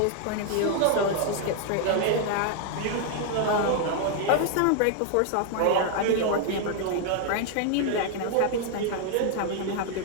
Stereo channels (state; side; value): different; both; correlation 0.00